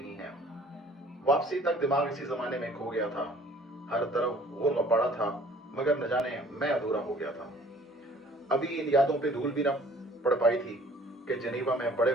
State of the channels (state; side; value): normal; both; correlation 0.53